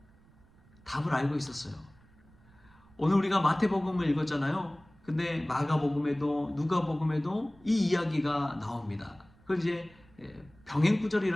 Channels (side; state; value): right; noise; rumble, 28 dB below the sound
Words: 답을 알고 있었어요. 오늘 우리가 마태복음을 읽었잖아요. 근데 마가복음에도 누가복음에도 이 이야기가 나옵니다. 그걸 이제